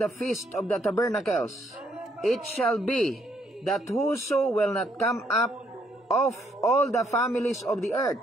feast of the tabernacles. It shall be that whoso will not come up of all the families of the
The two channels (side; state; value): both; normal; correlation 0.70